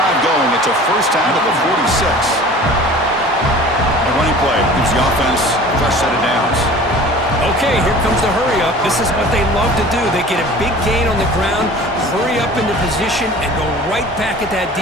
going. It's a first down at the 46. A running play gives the offense a fresh set of downs. Okay, here comes the hurry up. This is what they love to do. They get a big gain on the ground, hurry up into position, and go right back at that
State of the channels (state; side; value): normal; both; correlation 0.43